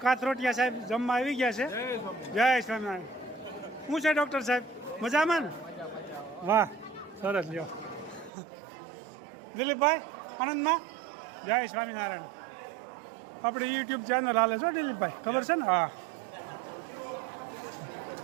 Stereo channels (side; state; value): left; drops out; at 8.3 s